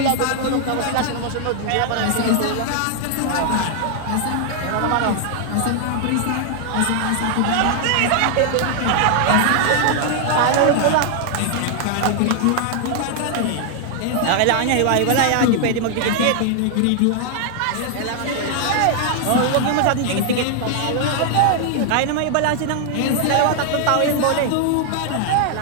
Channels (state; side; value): different; both; correlation 0.00